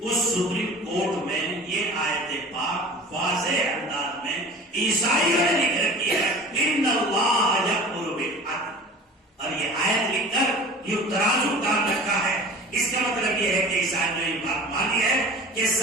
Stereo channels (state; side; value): normal; both; correlation 0.40